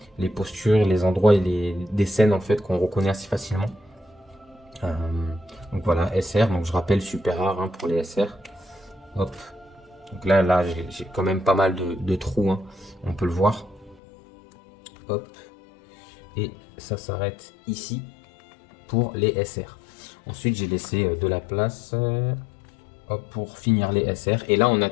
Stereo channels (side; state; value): right; drops out; at 14.0 s